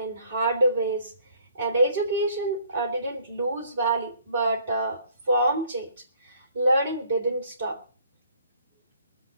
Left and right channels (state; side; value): inverted; both; correlation -0.61